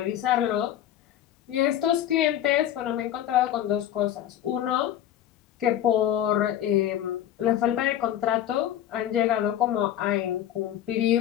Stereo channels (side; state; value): right; quieter; 11.4 dB